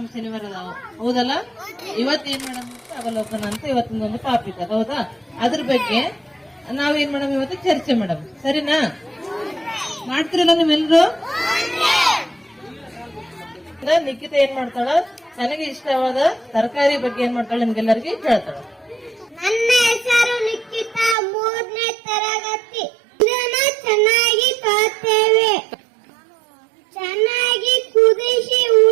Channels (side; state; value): left; drops out; at 21.2 s